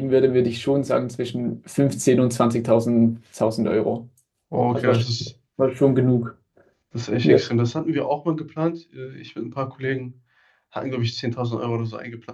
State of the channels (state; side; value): identical; both; correlation 1.00